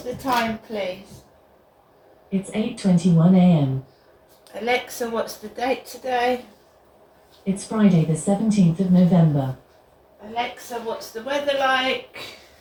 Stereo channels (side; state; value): both; identical; correlation 1.00